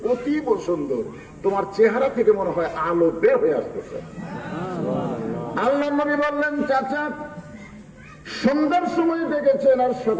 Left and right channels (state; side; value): identical; both; correlation 1.00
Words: অতীব সুন্দর, তোমার চেহারা থেকে মনে হয় আলো বের হয়ে আসতেছে। আল্লাহর নবী বললেন, চাচা সন্ধ্যার সময় দেখেছেন আর